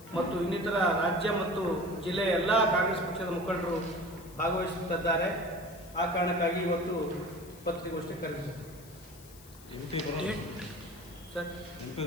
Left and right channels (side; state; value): left; noise; hiss, 21 dB below the sound